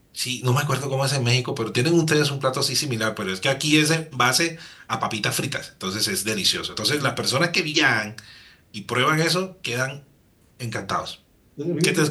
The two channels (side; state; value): both; identical; correlation 1.00